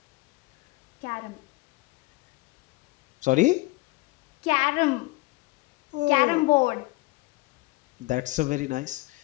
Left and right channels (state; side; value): quieter; right; 22.1 dB